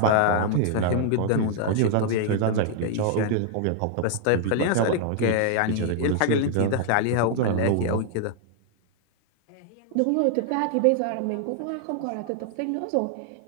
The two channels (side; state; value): both; different; correlation 0.00